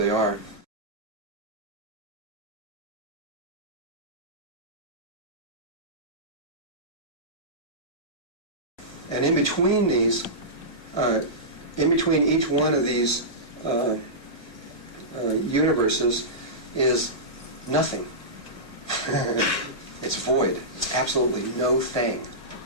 are. And in between these, in between each one of these universes is nothing. It's void. It's absolutely no thing.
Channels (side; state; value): right; late; 1.8 ms